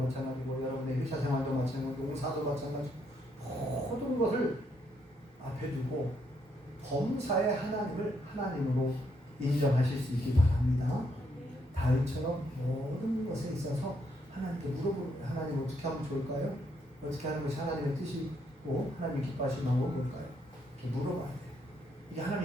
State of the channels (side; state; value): both; normal; correlation 0.74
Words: 여러분의 회사 생활도 마찬가지고, 농사도 마찬가지고, 모든 것을 앞에 두고 범사의 하나님을 하나님으로 인정하실 수 있기 바랍니다. 다윗처럼 모든 것에 있어서 하나님께 물어보고, 하나님 어떻게 하면 좋을까요? 어떻게 하는 것이 하나님의 뜻이고 하나님 기뻐하시는 방법은 뭘까요? 이렇게 물어봐야 돼요. 이게